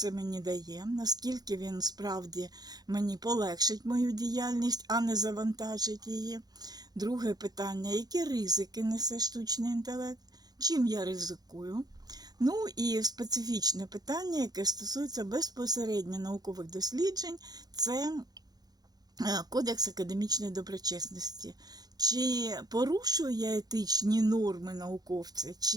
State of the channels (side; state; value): left; late; 0.19 ms